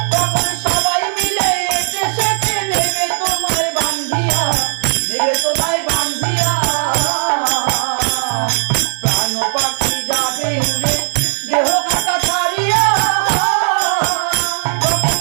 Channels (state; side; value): silent; left; digital silence